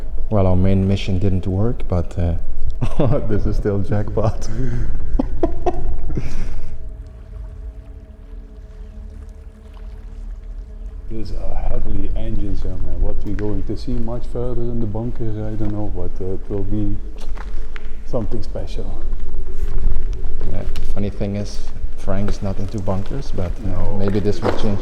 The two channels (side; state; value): both; identical; correlation 1.00